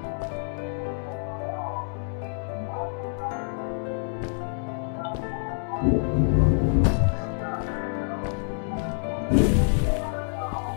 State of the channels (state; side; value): silent; right; digital silence